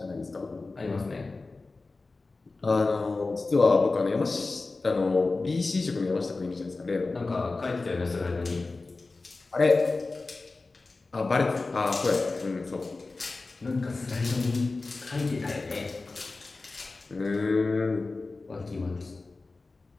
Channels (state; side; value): quieter; right; 3.6 dB